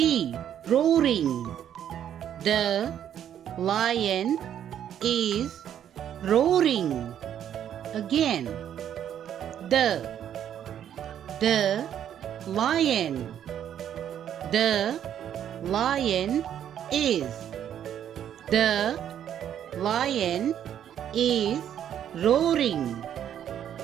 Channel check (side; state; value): left; quieter; 9.9 dB